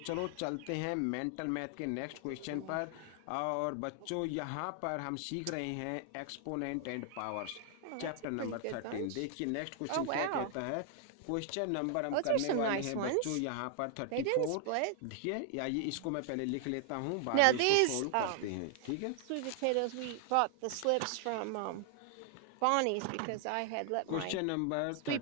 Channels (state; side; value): different; both; correlation 0.00